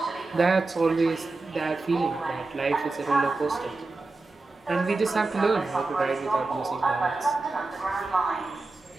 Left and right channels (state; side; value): quieter; left; 3.4 dB